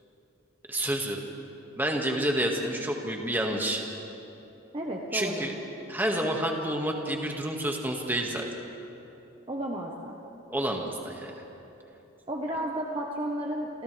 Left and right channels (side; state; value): both; normal; correlation 0.52